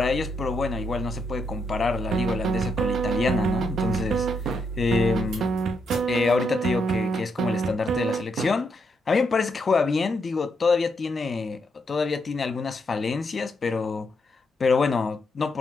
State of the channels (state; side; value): normal; both; correlation 0.79